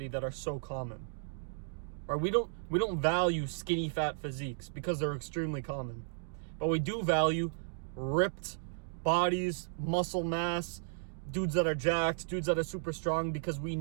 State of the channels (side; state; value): left; silent; digital silence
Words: that are so common. Right? We don't value skinny fat physiques because they're extremely common. But we do value ripped bodies, muscle mass, dudes that are jacked, dudes that are super strong, because we